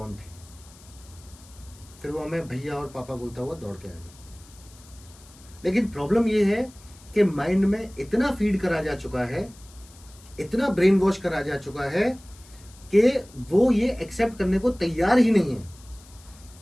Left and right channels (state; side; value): noise; left; hiss, 24 dB below the sound